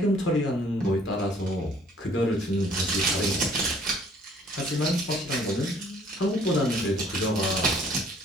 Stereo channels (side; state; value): both; normal; correlation 0.59